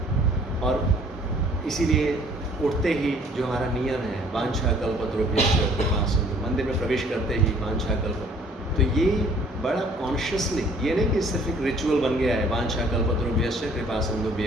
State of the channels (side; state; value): both; normal; correlation 0.57